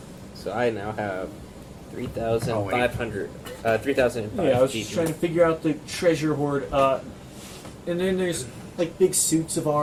So I now have 3,500. 3,005 Yeah, I was each. just trying to figure out the treasure hoard. And then there's like big suits of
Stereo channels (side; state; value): both; identical; correlation 1.00